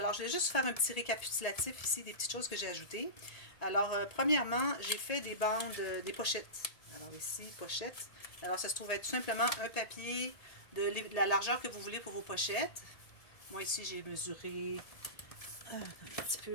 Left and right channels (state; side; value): late; right; 1.8 ms